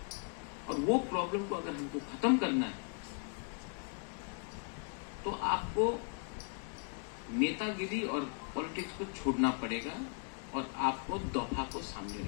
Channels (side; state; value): right; quieter; 39.6 dB